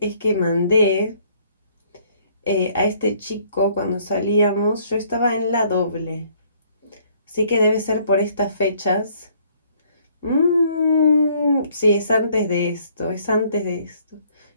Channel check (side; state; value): both; inverted; correlation -0.63